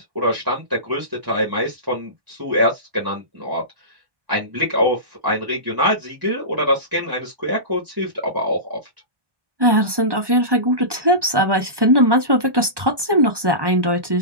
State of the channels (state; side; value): late; left; 1.1 ms